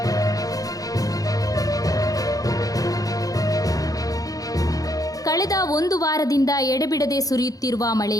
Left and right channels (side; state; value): right; late; 0.17 ms